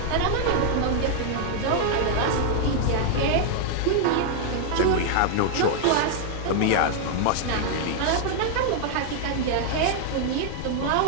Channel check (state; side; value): different; both; correlation 0.00